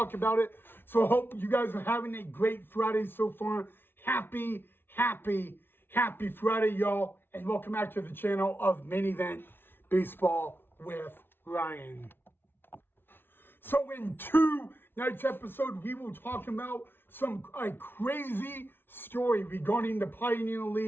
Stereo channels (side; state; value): right; late; 0.11 ms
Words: about it. So I hope you guys are having a great Friday so far. Happy Friday, y'all. And welcome back to the channel of Main Event Baseball with Ryan. So in tonight's episode, we will talk about a crazy story regarding the Pioneer